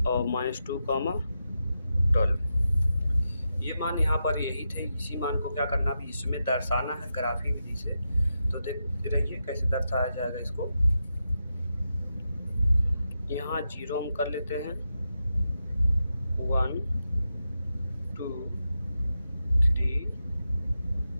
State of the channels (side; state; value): both; inverted; correlation -0.88